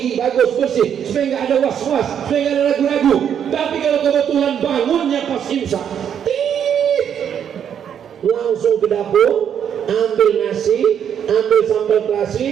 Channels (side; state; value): left; quieter; 8.6 dB